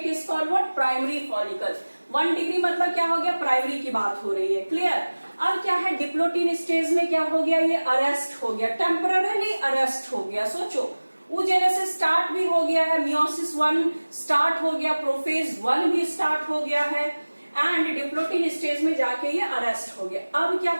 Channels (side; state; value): both; inverted; correlation -1.00